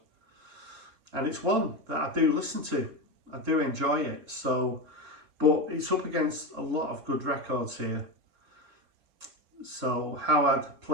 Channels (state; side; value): late; left; 4.4 ms